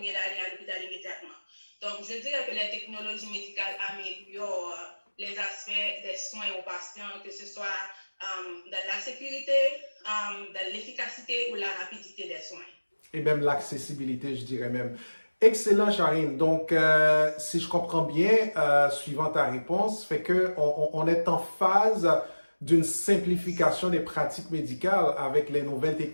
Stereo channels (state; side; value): inverted; both; correlation -1.00